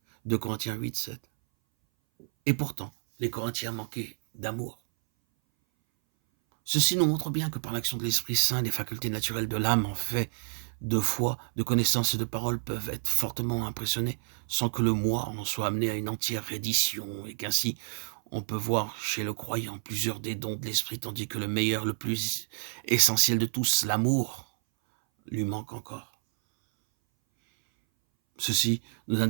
2 Corinthiens 8, 7. Et pourtant, les Corinthiens manquaient d'amour. Ceci nous montre bien que par l'action de l'Esprit Saint, les facultés naturelles de l'âme en fait de foi, de connaissance et de parole peuvent être fortement impressionnées sans que le moi en soit amené à une entière reddition et qu'ainsi on peut voir chez le croyant plusieurs des dons de l'Esprit tandis que le meilleur, le plus essentiel de tous, l'amour, lui manque encore. Ceci nous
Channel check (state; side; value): silent; left; 58 dB below the other